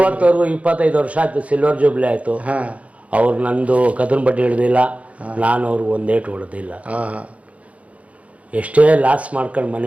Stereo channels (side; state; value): left; late; 0.065 ms